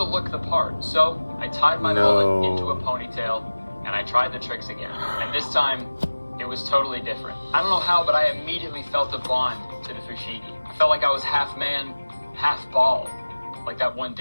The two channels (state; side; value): inverted; both; correlation -1.00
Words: look the part. So I tied my mullet into a ponytail, and I tried the tricks again. And this time, it was totally different. I don't know how, but I immediately felt a bond to the Fushigi. I felt like I was half man, half ball. Like that one